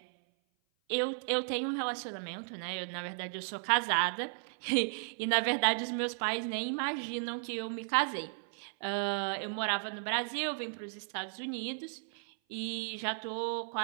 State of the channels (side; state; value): left; silent; 55 dB below the other